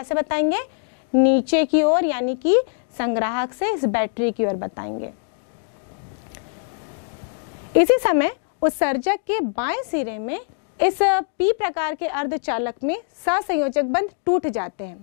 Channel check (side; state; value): right; silent; digital silence